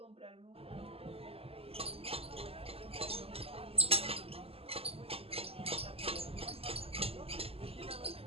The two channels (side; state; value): left; late; 0.28 ms